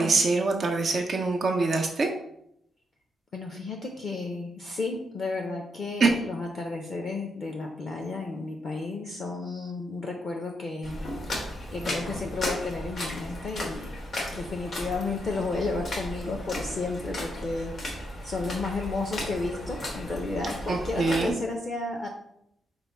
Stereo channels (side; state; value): both; normal; correlation 0.79